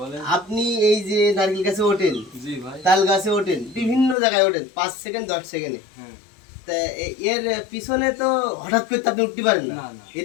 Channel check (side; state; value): right; drops out; at 4.2 s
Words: আপনি এই যে নারকেল গাছে ওঠেন, জি ভাই। তাল গাছে ওঠেন, বিভিন্ন জায়গায় ওঠেন 5 সেকেন্ড 10 সেকেন্ডে। হ্যাঁ। তা এর পিছনে তো হঠাৎ করে তো আপনি উঠতে পারেন না। না, না।